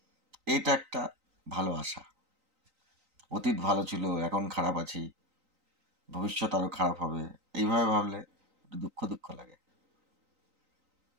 এইটা একটা ভালো আশা। অতীত ভালো ছিল, এখন খারাপ আছি, ভবিষ্যৎ আরো খারাপ হবে, এইভাবে ভাবলে একটু দুঃখ দুঃখ লাগে।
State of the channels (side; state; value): left; late; 3.9 ms